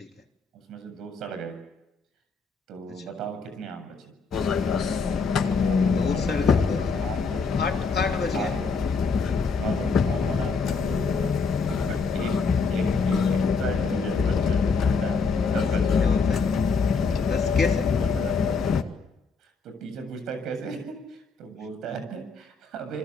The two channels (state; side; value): quieter; right; 4.7 dB